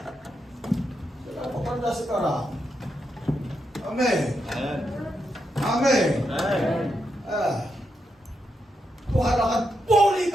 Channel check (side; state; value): both; normal; correlation 0.83